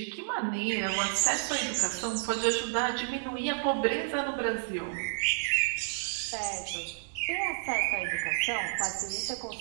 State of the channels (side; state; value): left; silent; digital silence